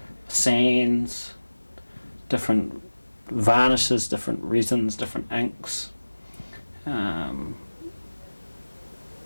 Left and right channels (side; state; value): both; inverted; correlation -1.00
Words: sands, different varnishes, different resins, different inks. I'm